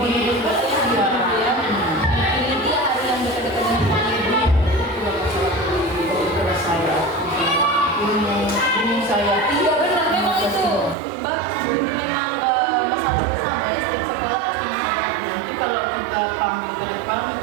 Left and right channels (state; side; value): drops out; left; at 11.0 s